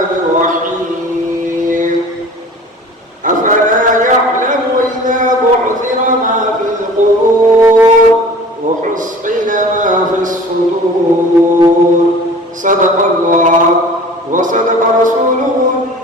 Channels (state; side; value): normal; both; correlation 0.44